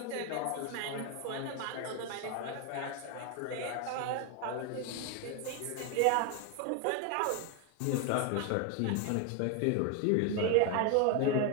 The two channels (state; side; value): different; both; correlation 0.01